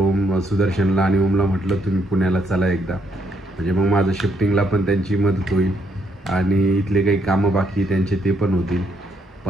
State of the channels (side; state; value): both; normal; correlation 0.73